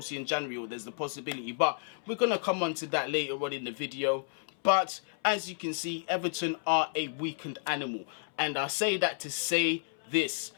in January, or there's the possibility. But we're going to come on to that later on in the video. But as you can see, Everton are a weakened animal. And I say that to say this.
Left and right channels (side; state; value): right; silent; 57 dB below the other